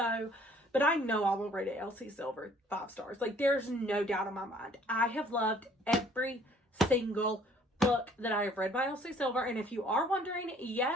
but I know I will rate it Elsie Silver 5 stars. Like, there's no doubt in my mind. I have loved every single book that I have read by Elsie Silver. And if you are wondering,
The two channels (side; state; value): both; normal; correlation 0.58